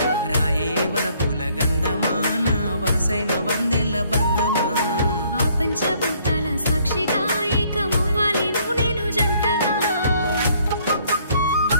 రాయే వలపుల గంధమా నా వరసైన వందెల్ల బంధమా ఆ పంచభూతాల సాక్షిగా ఏకమవ్వాలి నువ్వు నేను జంటగా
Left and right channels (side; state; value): both; inverted; correlation -0.64